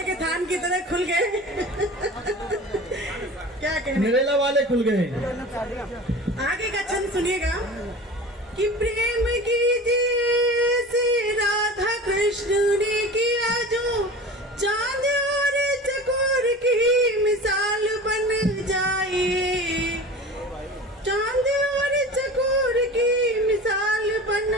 के थान की तरह खुल गए। क्या कहने, नरेला वाले खुल गए। आगे का छंद सुनिएगा, कि प्रेम कीजिए से राधा कृष्ण ने किया जो, चांद और चकोर की मिसाल बन जाइए, चांद और चकोर की मिसाल बन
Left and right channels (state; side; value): normal; both; correlation 0.36